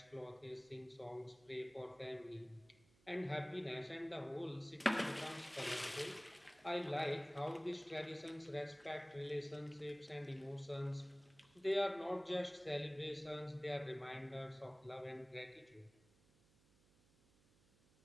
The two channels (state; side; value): noise; right; hum, 30 dB below the sound